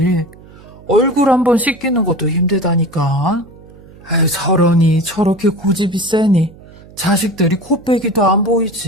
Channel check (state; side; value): noise; right; hum, 22 dB below the sound